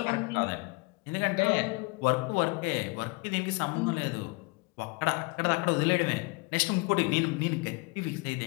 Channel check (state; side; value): quieter; right; 28.0 dB